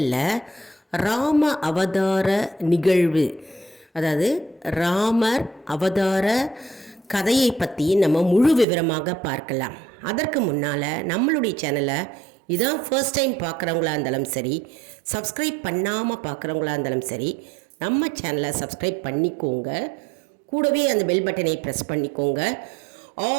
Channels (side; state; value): left; drops out; at 8.7 s